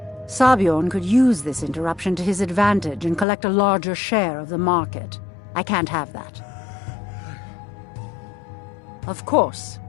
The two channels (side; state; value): right; drops out; at 3.2 s